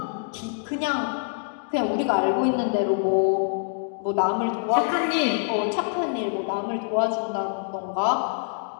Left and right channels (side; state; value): right; silent; digital silence